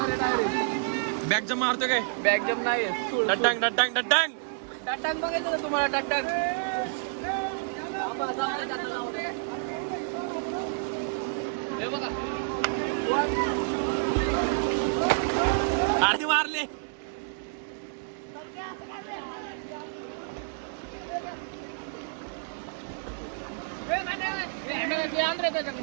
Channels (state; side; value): silent; left; digital silence